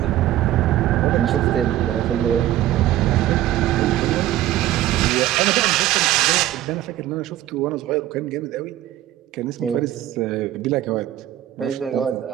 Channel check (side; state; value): left; quieter; 13.7 dB